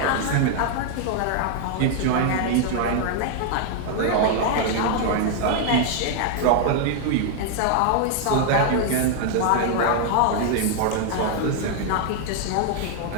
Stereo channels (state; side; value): different; both; correlation 0.00